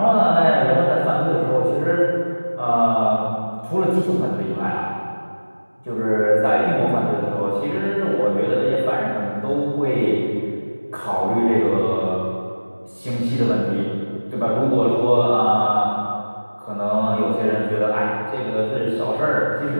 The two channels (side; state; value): both; inverted; correlation -1.00